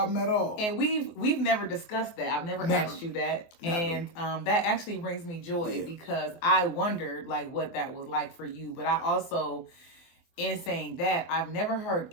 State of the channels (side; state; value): right; late; 24 ms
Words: at all. And we've never discussed that. I've never asked you that. Never. And that actually brings me joy because I wondered, like, what that was like for you. But I also, in saying that, I've never heard